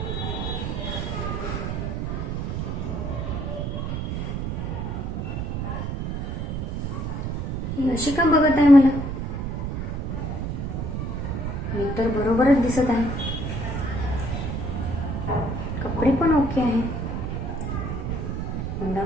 ही अशी का बघत आहे मला? मी तर बरोबरच दिसत आहे. कपडे पण ओके आहे. तोंडावर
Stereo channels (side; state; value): right; noise; rumble, 2 dB below the sound